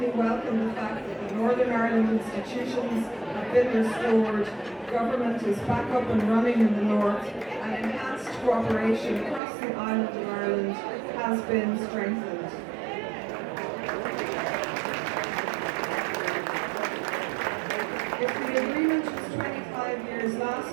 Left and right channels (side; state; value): left; drops out; at 9.4 s